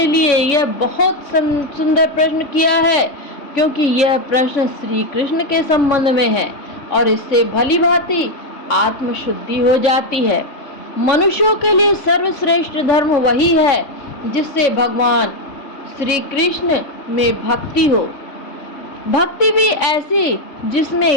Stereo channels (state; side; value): late; right; 3.5 ms